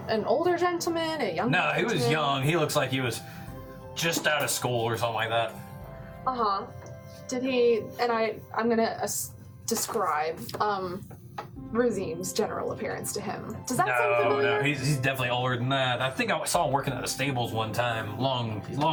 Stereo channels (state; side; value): identical; both; correlation 1.00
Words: an older gentleman, a younger No, he was gentleman? young. He looks like he was just out of school or something like that. Uh-huh. Did he, and I'm gonna describe, Razim's general appearance to him. Does that sound familiar? No, he's definitely older than that. I think I saw him working at the stables one time,